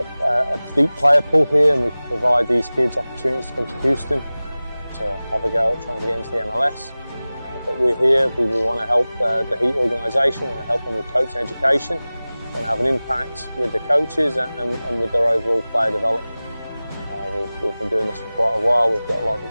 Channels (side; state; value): both; inverted; correlation -0.98